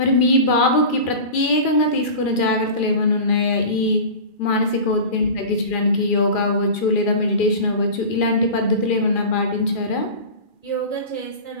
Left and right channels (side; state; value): right; late; 2.4 ms